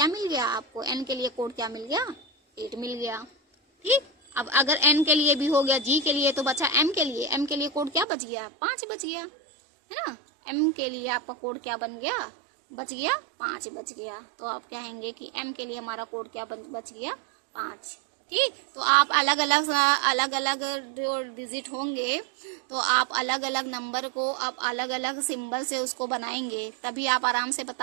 मिल गया, आपको N के लिए कोड क्या मिल गया, 8 मिल गया। ठीक, अब अगर N के लिए भी हो गया, G के लिए, तो बचा M के लिए। M के लिए कोड क्या बच गया, 5 बच गया, है ना। M के लिए आपका कोड क्या बन गया, बच गया 5 बच गया। तो आप कहेंगे कि M के लिए हमारा कोड क्या बच गया, 5। ठीक, तो आप अलग अलग जो डिजिट होंगे, तो आप अलग अलग नंबर को आप अलग अलग सिंबल से उसको बनाएंगे, तभी आप आराम से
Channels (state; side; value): drops out; left; at 8.1 s